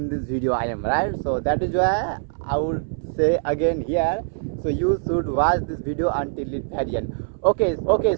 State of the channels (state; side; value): silent; left; 63 dB below the other